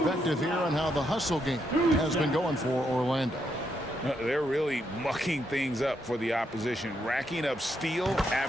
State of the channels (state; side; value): normal; both; correlation 0.79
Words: here on how the hustle game has been going for Orlando. They're really mucking things up for the opposition, racking up steal